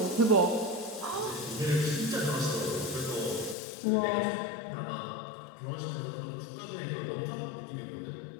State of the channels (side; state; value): right; drops out; at 3.6 s